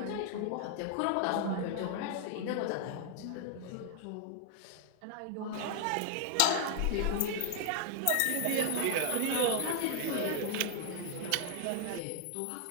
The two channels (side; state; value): both; different; correlation 0.00